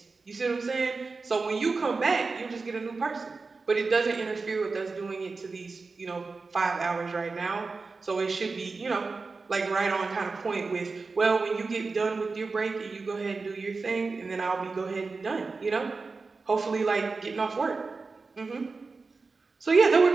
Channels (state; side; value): quieter; left; 4.1 dB